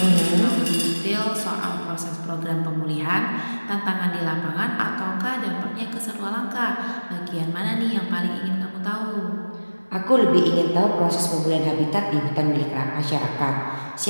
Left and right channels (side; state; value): both; inverted; correlation -1.00